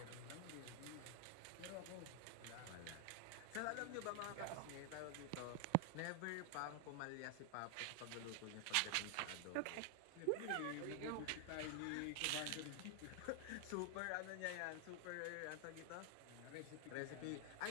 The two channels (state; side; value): different; both; correlation 0.00